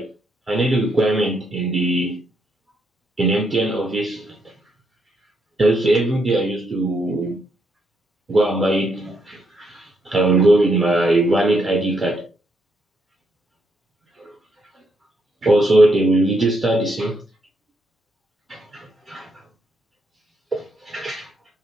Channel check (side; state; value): both; normal; correlation 0.77